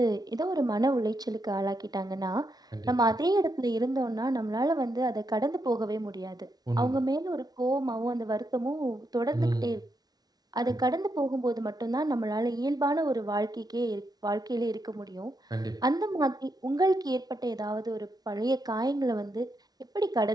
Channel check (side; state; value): left; late; 0.19 ms